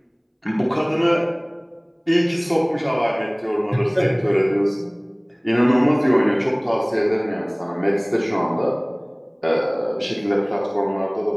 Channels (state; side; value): identical; both; correlation 1.00